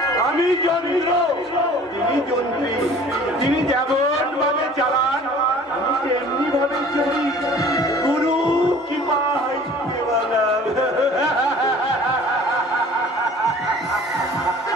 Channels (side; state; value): both; normal; correlation 0.48